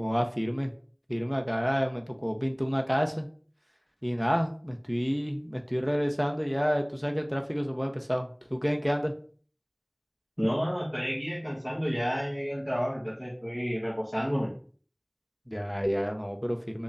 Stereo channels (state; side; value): identical; both; correlation 1.00